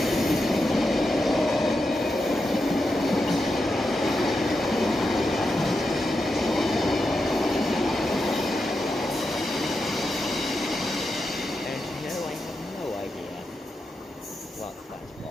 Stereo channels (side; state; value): both; normal; correlation 0.87